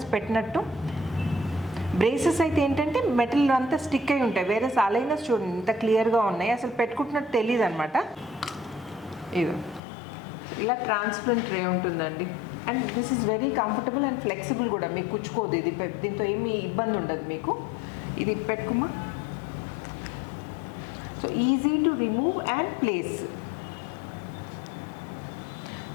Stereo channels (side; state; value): right; drops out; at 9.8 s